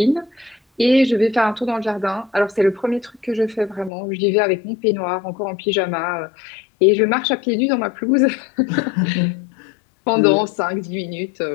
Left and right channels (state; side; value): drops out; right; at 3.9 s